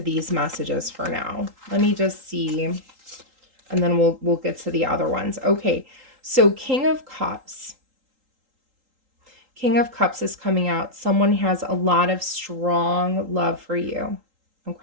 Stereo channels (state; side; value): late; left; 3.8 ms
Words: these messages for now. Let me just see, and then we'll get to the other ones. Okay, so King of Cups. King of Cups is coming out. Someone has a lot of strong love for you,